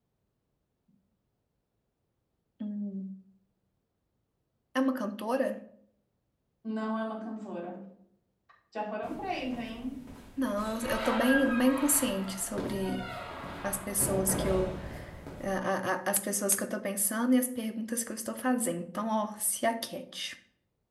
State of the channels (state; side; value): identical; both; correlation 1.00